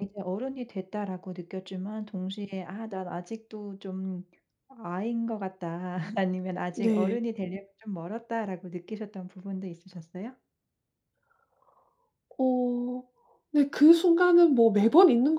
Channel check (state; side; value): identical; both; correlation 1.00